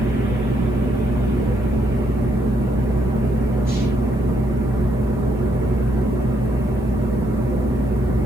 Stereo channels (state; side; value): normal; both; correlation 0.74